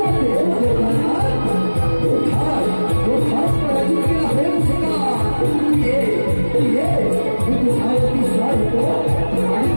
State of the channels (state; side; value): inverted; both; correlation -1.00